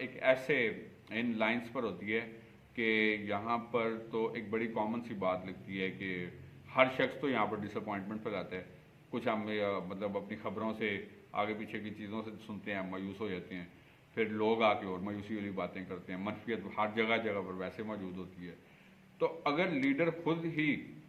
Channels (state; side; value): identical; both; correlation 1.00